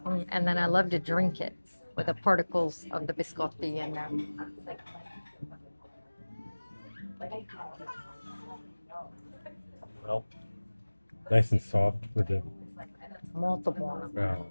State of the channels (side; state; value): both; inverted; correlation -1.00